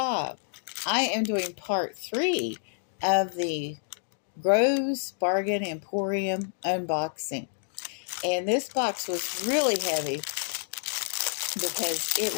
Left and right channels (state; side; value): silent; right; digital silence